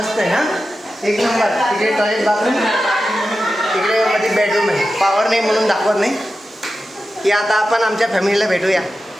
आहे. हा एक नंबर. तिकडे टॉयलेट बाथरूम, तिकडे मध्ये बेडरूम आहे. पावर नाही म्हणून दाखवत नाही की आता आपण आमच्या फॅमिलीला भेटूया.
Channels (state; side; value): normal; both; correlation 0.92